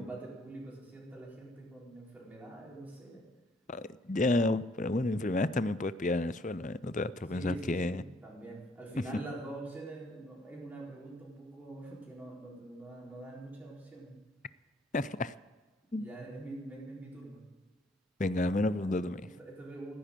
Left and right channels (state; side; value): normal; both; correlation 0.66